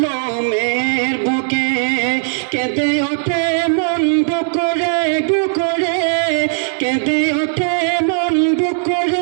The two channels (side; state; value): left; silent; digital silence